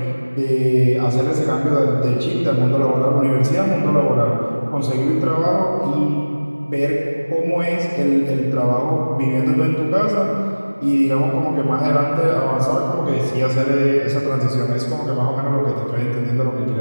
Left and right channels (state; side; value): inverted; both; correlation -1.00